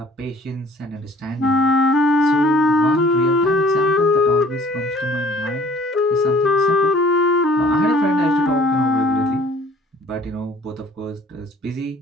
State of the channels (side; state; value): both; normal; correlation 0.52